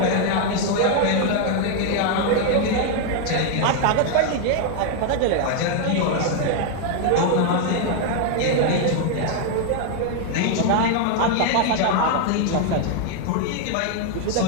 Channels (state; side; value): different; both; correlation 0.00